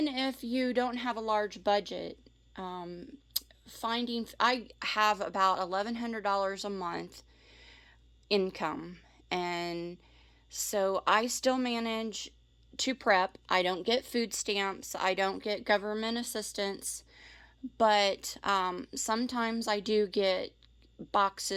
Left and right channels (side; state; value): both; identical; correlation 1.00